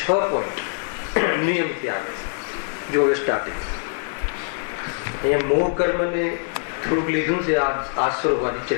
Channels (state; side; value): silent; right; 63 dB below the other